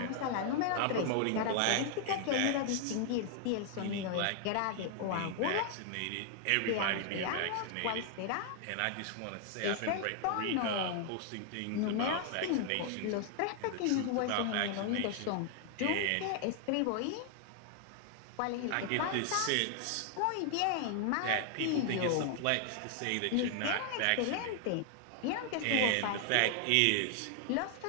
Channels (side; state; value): both; different; correlation 0.00